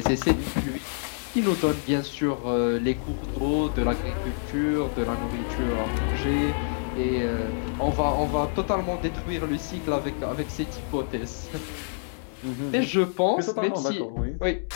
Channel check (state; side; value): silent; right; 60 dB below the other